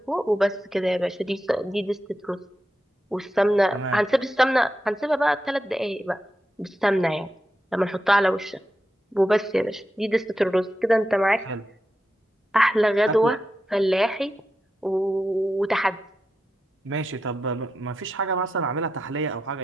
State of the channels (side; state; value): both; normal; correlation 0.88